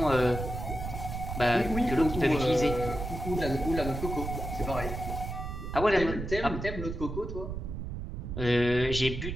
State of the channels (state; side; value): noise; right; rumble, 6 dB below the sound